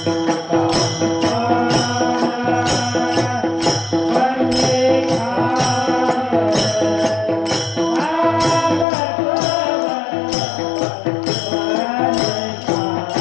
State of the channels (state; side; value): drops out; right; at 8.8 s